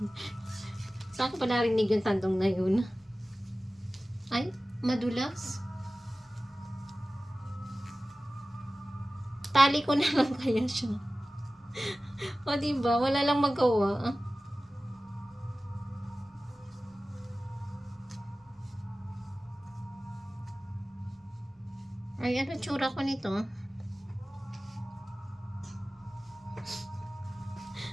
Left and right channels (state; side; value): normal; both; correlation 0.96